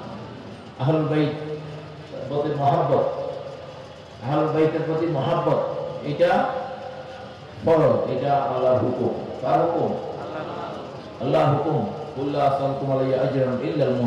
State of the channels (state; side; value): identical; both; correlation 1.00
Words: আহলুল বাইত প্রতি মহব্বত, আহলুল বাইতের প্রতি মহব্বত এটা ফরজ, এটা আল্লাহর হুকুম। কার হুকুম? আল্লাহর হুকুম। কুল্লা আসালকুম আলাইহি আজরান ইল্লা আল